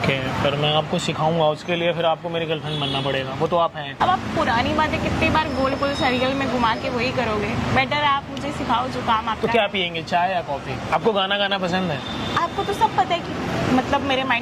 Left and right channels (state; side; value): identical; both; correlation 1.00